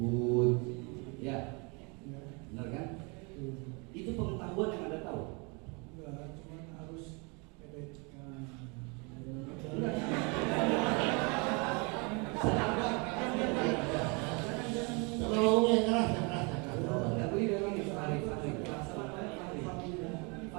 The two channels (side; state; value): left; quieter; 31.4 dB